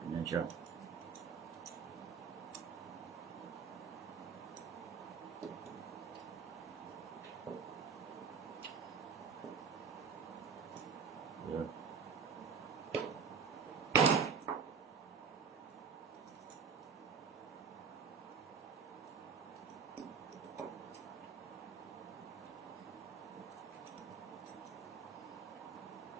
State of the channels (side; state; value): left; quieter; 6.2 dB